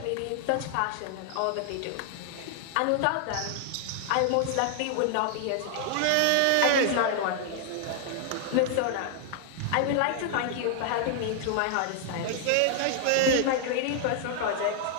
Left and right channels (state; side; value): different; both; correlation 0.00